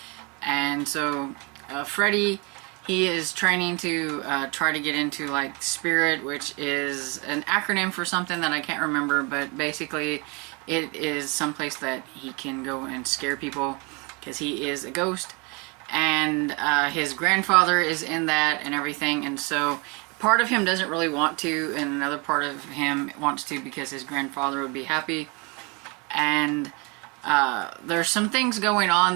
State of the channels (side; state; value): left; quieter; 30.1 dB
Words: And so, Freddie, he is training to try to get into like Spirit, which is an acronym for something that I can't remember, but basically it is someplace that he can go and scare people, because he is a ghost, and his grandfather is in that and everything, and so part of him doesn't really want to, and another part of him wants to because his grandfather would be happy. And there's some things going